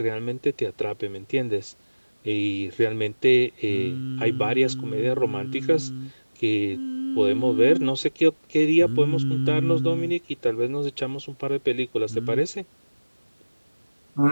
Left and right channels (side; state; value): both; inverted; correlation -1.00